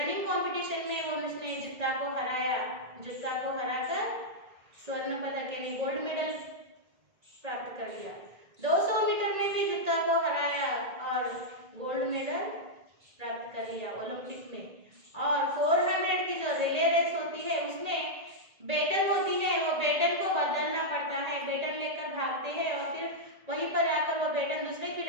कंपटीशन में वो उसने जुत्ता को हराया। जुत्ता को हराकर स्वर्ण पदक यानी गोल्ड मेडल प्राप्त कर लिया। 200 मीटर में भी जुत्ता को हराया और गोल्ड मेडल प्राप्त कर लिया ओलंपिक में। और 400 की जो रिले रेस होती है, उसमें बेटन होती है, वो बेटन को बदलना पड़ता है। बेटन लेकर भागते हैं और फिर वहीं पर आकर वो बेटन दूसरे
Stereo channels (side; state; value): left; late; 1.8 ms